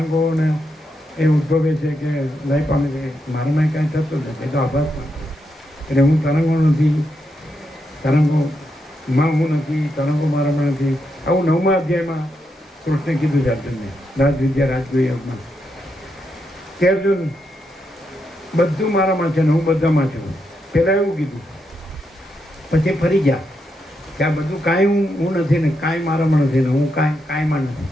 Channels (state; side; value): normal; both; correlation 0.83